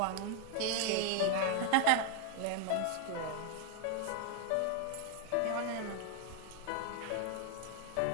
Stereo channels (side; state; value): both; different; correlation 0.01